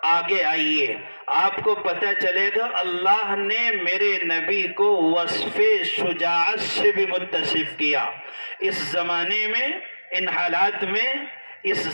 آگے آئیے، آپ کو پتہ چلے گا اللہ نے میرے نبی کو وصف شجاعت سے بھی متصف کیا۔ اس زمانے میں، ان حالات میں اس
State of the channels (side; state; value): both; inverted; correlation -1.00